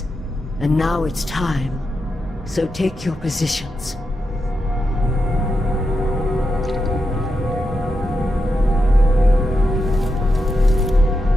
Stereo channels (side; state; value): both; normal; correlation 0.86